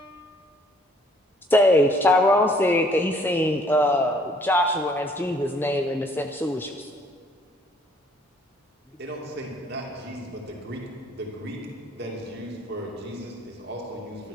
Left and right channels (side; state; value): both; normal; correlation 0.61